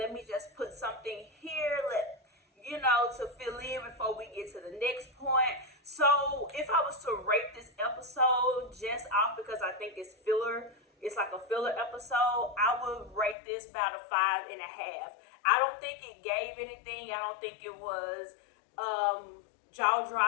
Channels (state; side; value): drops out; right; at 13.4 s